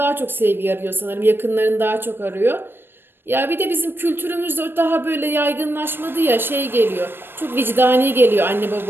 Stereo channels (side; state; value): left; late; 0.10 ms